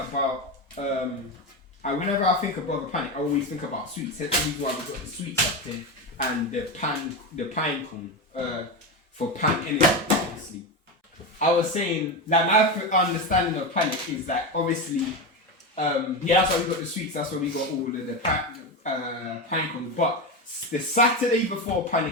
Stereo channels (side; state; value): both; normal; correlation 0.16